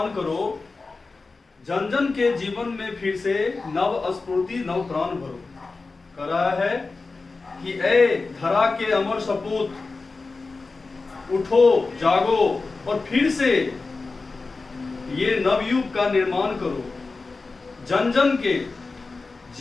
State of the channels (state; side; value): quieter; right; 3.9 dB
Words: करो, जन जन के जीवन में फिर से नव स्फूर्ति नव प्राण भरो। कह रहा है कि ए धरा के अमर सपूत, उठो जागो और फिर से ये नवयुग का निर्माण करो। जन जन के